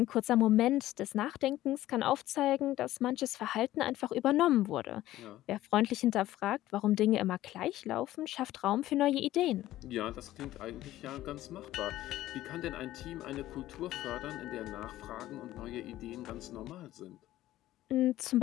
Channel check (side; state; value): right; quieter; 14.8 dB